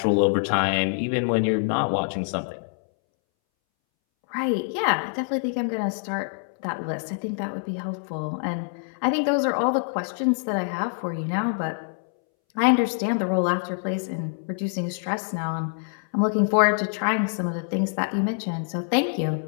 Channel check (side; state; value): right; silent; 62 dB below the other